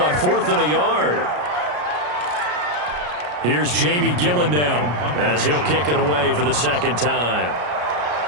4th and a yard. Here's Jamie Gillen down as he'll kick it away for the 2nd time.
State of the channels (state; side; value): late; left; 33 ms